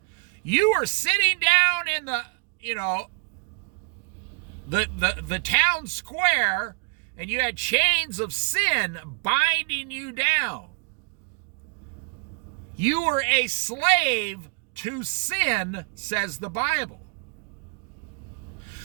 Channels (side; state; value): left; quieter; 37.2 dB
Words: You were sitting down in the town square, and you had chains of sin binding you down. You were a slave to sin, says the Bible.